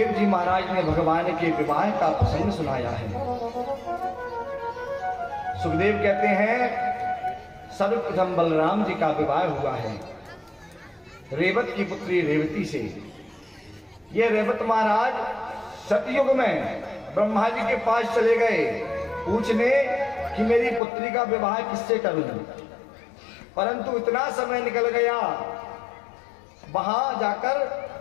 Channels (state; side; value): drops out; right; at 20.8 s